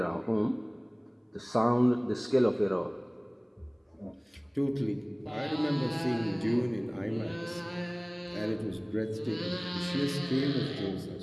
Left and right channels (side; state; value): both; identical; correlation 1.00